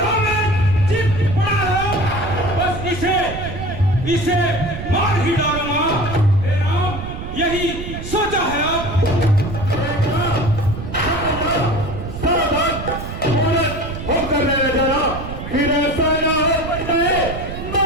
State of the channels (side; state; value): right; noise; rumble, 8 dB below the sound